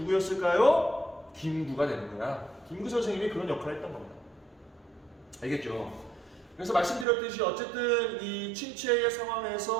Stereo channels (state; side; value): drops out; left; at 7.1 s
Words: 김구가 되는 거야. 김구 선생님이 그런 역할을 했던 겁니다. 알겠죠? 그래서 말씀드렸듯이 어쨌든 이 침체의